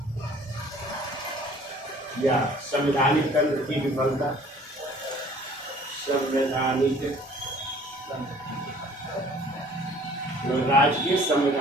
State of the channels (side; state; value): both; normal; correlation 0.52